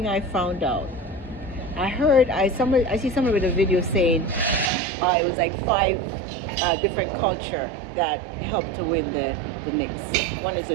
I found out, I see somebody with a video saying it was like five different culture that helped to win the Knicks. One is a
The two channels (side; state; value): left; drops out; at 4.7 s